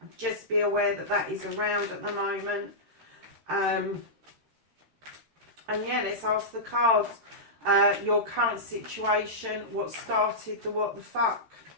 just be aware that that is around at the moment. And yeah, let's ask the cards. Your current situation, what started the what the fuck?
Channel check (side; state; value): left; late; 13 ms